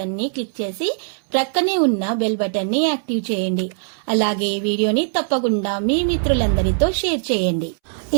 ని క్లిక్ చేసి ప్రక్కనే ఉన్న బెల్ బటన్ ని యాక్టివ్ చేయండి. అలాగే వీడియోని తప్పకుండా మీ మిత్రులందరితో షేర్ చేయండి.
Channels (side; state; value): left; silent; 65 dB below the other